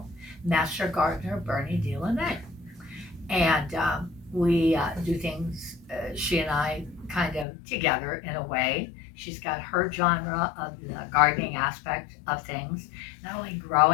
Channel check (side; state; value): right; drops out; at 7.5 s